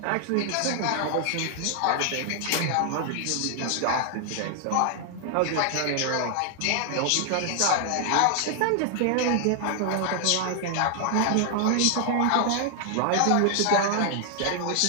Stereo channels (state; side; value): different; both; correlation 0.00